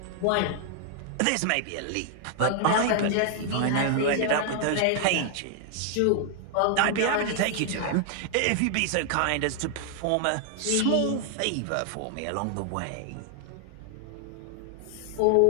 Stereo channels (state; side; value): different; both; correlation 0.00